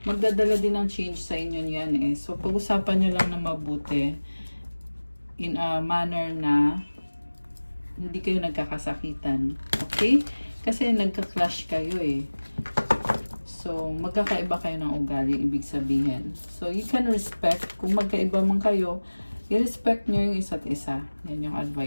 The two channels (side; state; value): both; inverted; correlation -1.00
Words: magdadala din ng change sa inyo yan eh. So, pag-usapan nyo lang na mabuti in a manner na hindi kayo nagkakasakitan. Okay? Kasi nagka-clash kayo eh. So, magkakaiba kayo ng ugali, ibig sabihin. So, you can respect. Kung magkaiba man kayo, i-respect nyo yung isa't isa. Yan yung